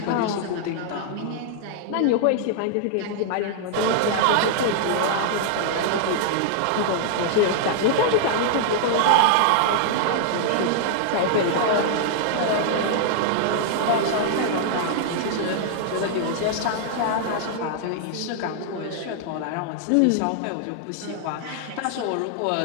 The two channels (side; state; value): both; different; correlation -0.01